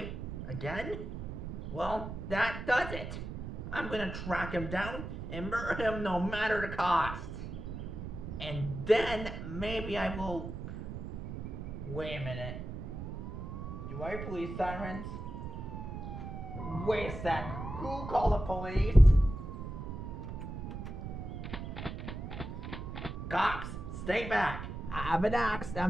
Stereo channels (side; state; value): right; noise; rumble, 7 dB below the sound